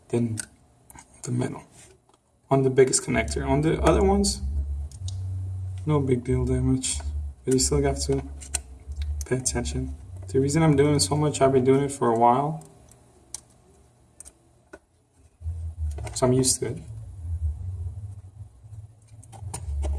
then the middle. on the biggest connector. On the other ones, no big deal damage, but you still have to pay attention. The reason I'm doing it so much, I've been doing it for a while, so I'm used to it.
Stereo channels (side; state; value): both; identical; correlation 1.00